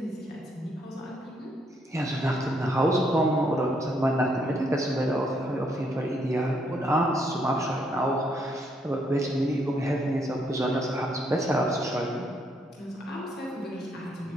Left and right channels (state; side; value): normal; both; correlation 0.73